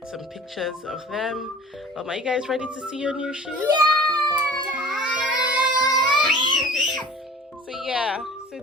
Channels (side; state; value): both; normal; correlation 0.43